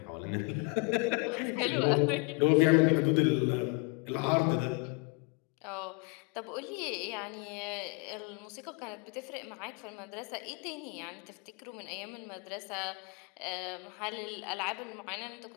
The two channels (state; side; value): quieter; right; 30.8 dB